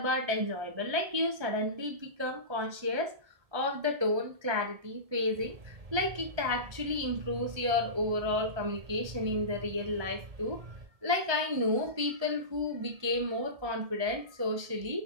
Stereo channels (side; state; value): left; late; 1.3 ms